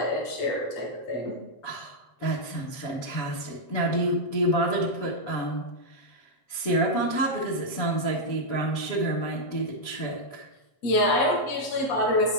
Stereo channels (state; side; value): late; right; 7.8 ms